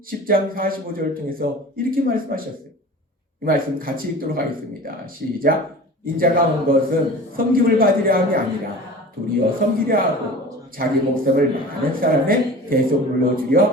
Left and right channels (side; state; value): both; normal; correlation 0.39